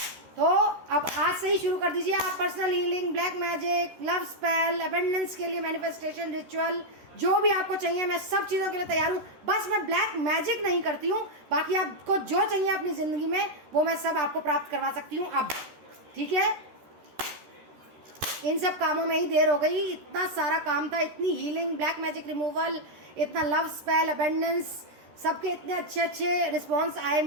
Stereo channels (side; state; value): left; late; 13 ms